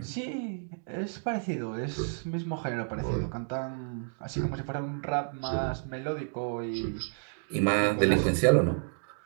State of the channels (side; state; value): left; silent; digital silence